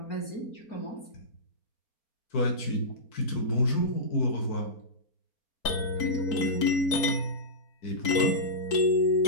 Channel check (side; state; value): right; late; 4.5 ms